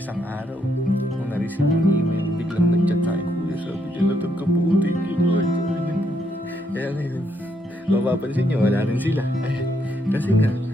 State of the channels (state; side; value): normal; both; correlation 0.75